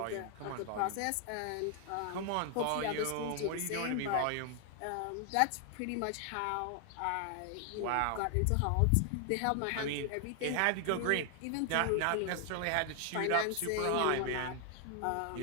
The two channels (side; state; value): both; different; correlation 0.00